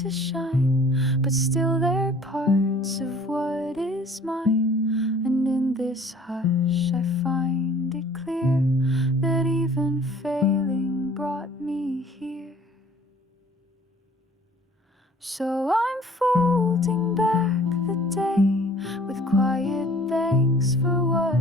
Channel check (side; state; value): both; normal; correlation 0.52